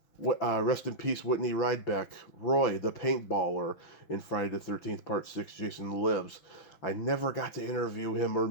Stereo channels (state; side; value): late; right; 6.0 ms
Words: rest in peace, Whitney Ridebeck, Roy, the paintballer in Friday the 13th, Part 6, Jason Lives. I never got to interview him or